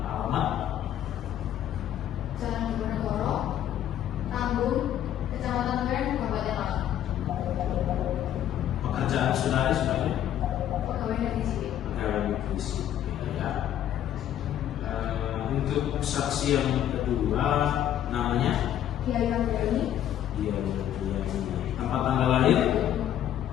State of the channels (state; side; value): quieter; right; 11.1 dB